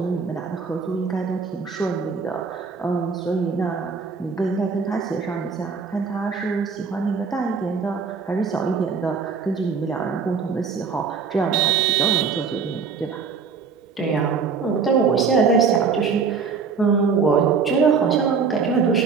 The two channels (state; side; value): quieter; left; 5.5 dB